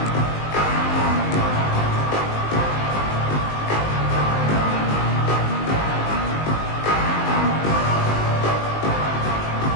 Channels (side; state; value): right; late; 19 ms